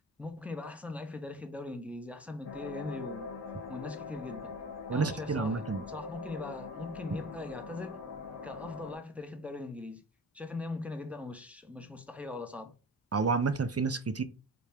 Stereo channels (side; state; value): both; normal; correlation 0.37